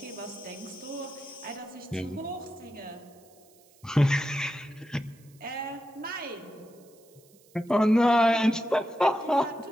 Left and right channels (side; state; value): right; noise; hiss, 29 dB below the sound